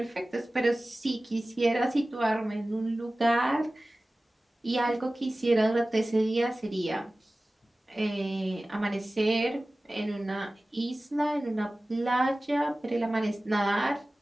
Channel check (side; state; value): both; normal; correlation 0.97